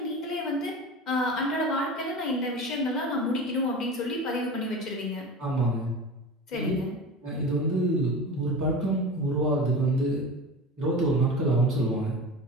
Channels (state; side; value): normal; both; correlation 0.31